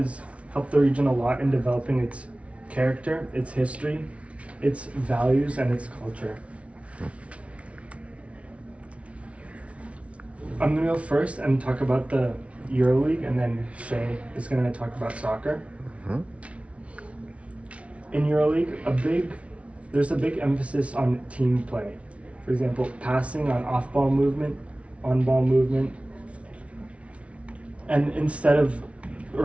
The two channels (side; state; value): left; late; 0.063 ms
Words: helped the region a lot in developing its character, its history, its values, and its culture. I'm going to go first and talk about the EuroLeague, and then Shay is going to talk about soccer. In EuroLeague, there's a big emphasis on team play. For example, passing, on off-ball movement, on-ball movement. And